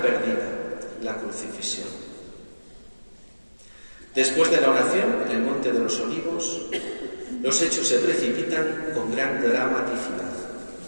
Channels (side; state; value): both; inverted; correlation -1.00